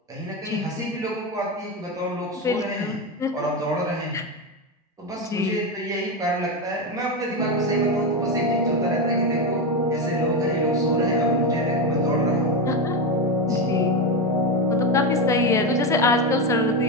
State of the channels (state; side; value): normal; both; correlation 0.13